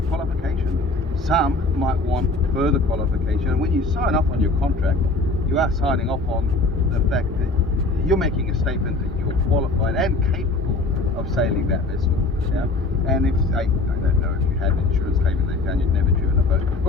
qualification. Some might want further qualification, and when you sign off on your contract, you are signing off on the fact that you're making a statement that you're qualified and capable of sailing that vessel. Yeah? And if I don't know if you had an insurance claim they found you'd never driven a boat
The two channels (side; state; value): right; quieter; 3.3 dB